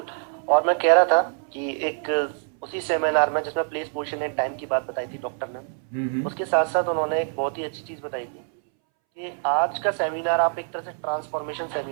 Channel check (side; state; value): left; silent; 62 dB below the other